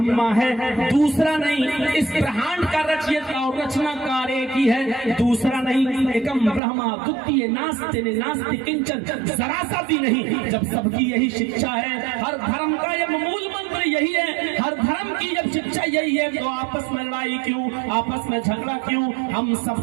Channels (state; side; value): drops out; left; at 6.6 s